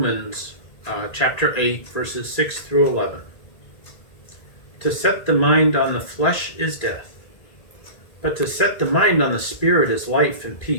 chapter 8, verses 6 through 11. To set the mind on the flesh is death, but to set the mind on the Spirit is life and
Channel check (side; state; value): right; late; 1.8 ms